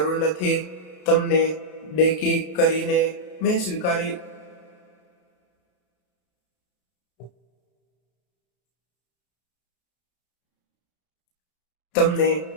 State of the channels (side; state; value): right; late; 33 ms